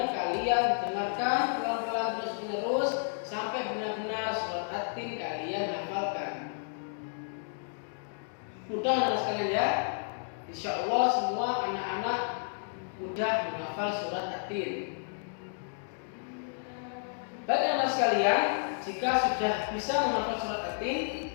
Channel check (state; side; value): silent; right; digital silence